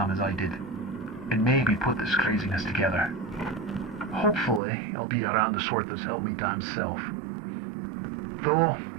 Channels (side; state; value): left; drops out; at 4.6 s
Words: as I did, and maybe put this craziness together. Hopefully, I'll be around the sort that's helped me damn self. Though,